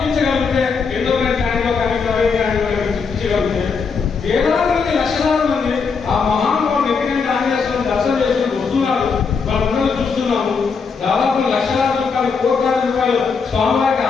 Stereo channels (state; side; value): quieter; right; 5.4 dB